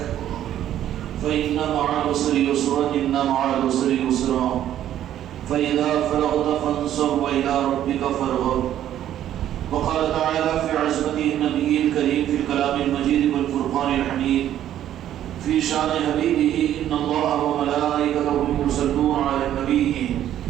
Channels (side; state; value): left; quieter; 11.5 dB